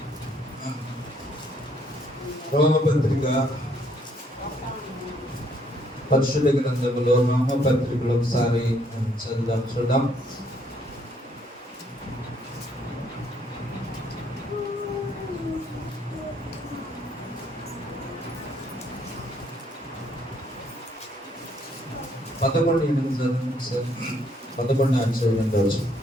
రోమపత్రిక పరిశుద్ధ గ్రంథంలో రోమపత్రికలో ఒకసారి చదువుదాం, చూద్దాం. పదకొండు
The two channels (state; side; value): normal; both; correlation 0.68